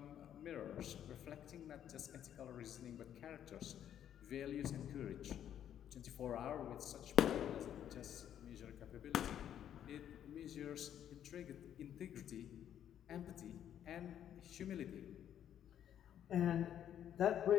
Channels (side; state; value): right; quieter; 10.1 dB